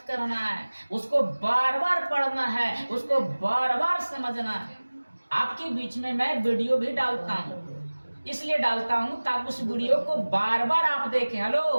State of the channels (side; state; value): both; inverted; correlation -1.00